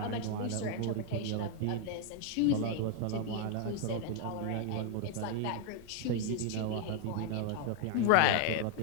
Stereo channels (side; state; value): both; different; correlation 0.00